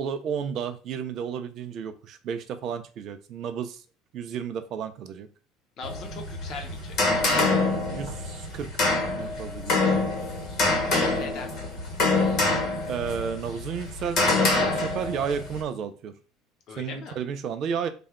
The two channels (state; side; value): normal; both; correlation 0.47